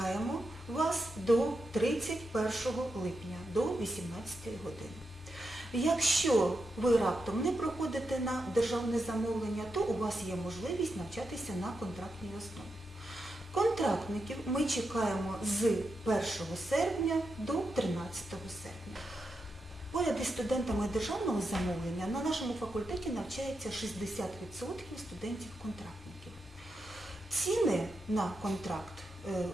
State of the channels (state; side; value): normal; both; correlation 0.87